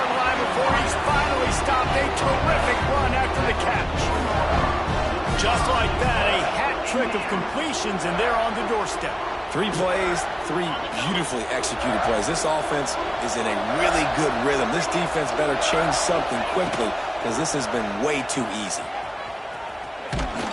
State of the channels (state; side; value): identical; both; correlation 1.00